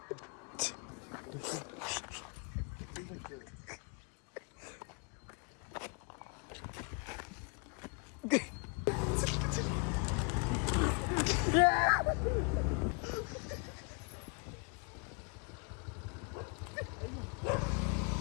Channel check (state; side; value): quieter; right; 35.7 dB